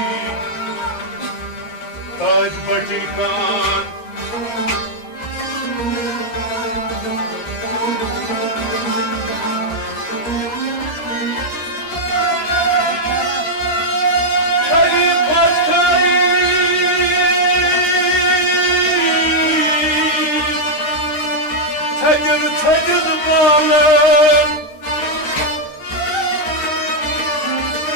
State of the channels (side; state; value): right; late; 13 ms